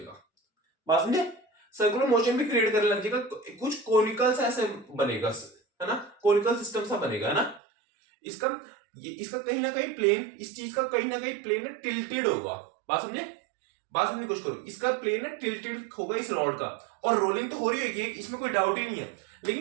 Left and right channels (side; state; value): left; drops out; at 7.6 s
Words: बात समझे? सर्कुलर मोशन भी क्रिएट करने लग जाएगा, कुछ कोनिकल सा ऐसे बनेगा, है ना, कोनिकल सिस्टम सा बनेगा, है ना। इसका कहीं ना कहीं प्लेन, इस चीज का कहीं ना कहीं प्लेन टिल्टेड होगा। बात समझे की कोशिश करो, इसका प्लेन टिल्टेड होगा इस रॉड का, और रोलिंग तो हो रही होगी, इसमें कोई डाउट ही नहीं है।